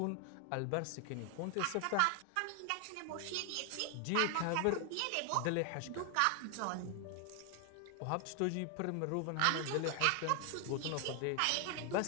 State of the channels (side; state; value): both; different; correlation 0.00